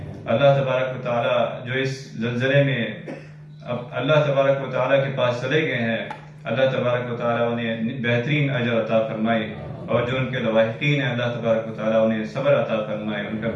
اللہ تبارک و تعالیٰ جو اس زلزلے میں اب اللہ تبارک و تعالیٰ کے پاس چلے گئے ہیں، اللہ تبارک و تعالیٰ انہیں بہترین اجر عطا فرمائے، اور جو ان کے لواحقین ہیں اللہ تبارک و تعالیٰ انہیں صبر عطا فرمائے، ان کا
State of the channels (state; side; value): identical; both; correlation 1.00